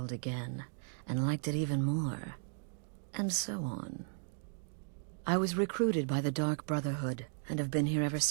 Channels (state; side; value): silent; left; 54 dB below the other